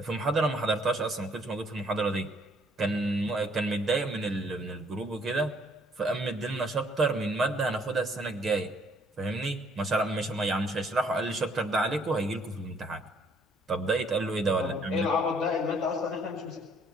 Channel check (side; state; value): both; normal; correlation 0.64